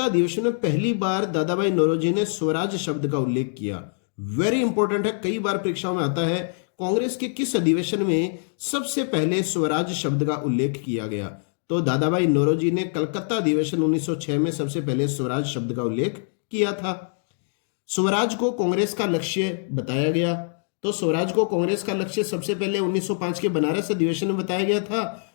अधिवेशन में पहली बार दादा भाई नौरोजी ने स्वराज शब्द का उल्लेख किया। वेरी इंपॉर्टेंट है, कई बार परीक्षाओं में आता है। कांग्रेस के किस अधिवेशन में सबसे पहले स्वराज शब्द का उल्लेख किया गया? तो दादा भाई नौरोजी ने कलकत्ता अधिवेशन 1906 में सबसे पहले स्वराज शब्द का उल्लेख किया था। स्वराज को कांग्रेस का लक्ष्य बताया गया। तो स्वराज को कांग्रेस का लक्ष्य सबसे पहले 1905 के बनारस अधिवेशन में बताया गया था,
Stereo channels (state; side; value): silent; right; digital silence